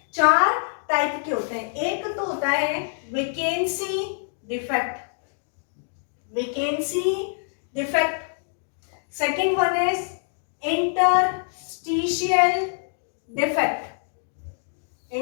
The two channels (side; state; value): right; silent; digital silence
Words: 4 टाइप के होते हैं। एक तो होता है vacancy defect, second one is interstitial